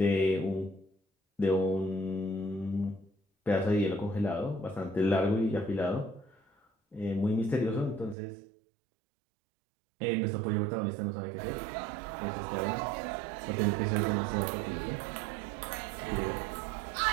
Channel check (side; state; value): left; drops out; at 8.2 s